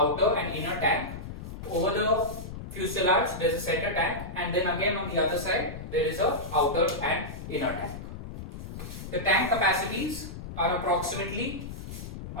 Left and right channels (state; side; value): noise; left; rumble, 9 dB below the sound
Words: and inner tank. Over the fuselage there is a center tank, and then again on the other side there is a outer and inner tank. The tank capacities are approximately,